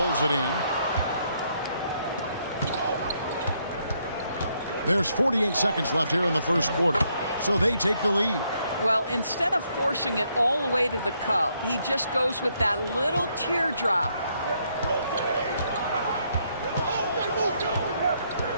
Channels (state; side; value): inverted; both; correlation -0.73